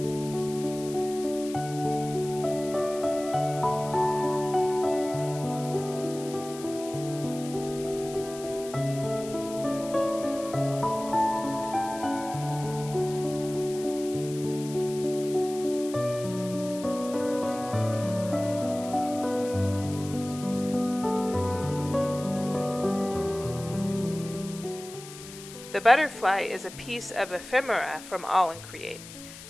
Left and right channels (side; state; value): left; noise; hiss, 15 dB below the sound